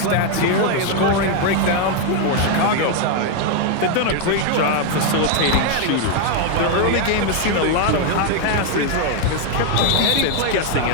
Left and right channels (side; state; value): both; different; correlation 0.01